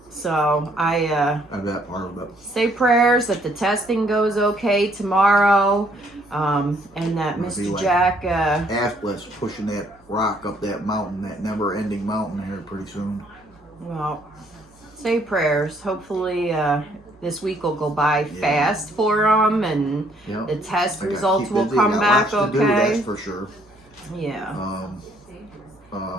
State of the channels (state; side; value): normal; both; correlation 0.66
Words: So I That part of it. say prayers that the testing goes okay tomorrow, and that It'll be Mr. like Jack. Atlas pushing that rock up that mountain, that never-ending mountain here pretty soon. Well, say prayers. Hopefully, this week will go by fast for him, and Yep. the test I gotta results keep will busy. come Got back lots to do, okay. that's for sure. Yeah.